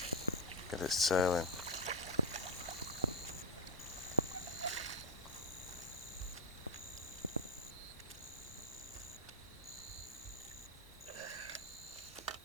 get it sailing.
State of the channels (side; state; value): both; normal; correlation 0.03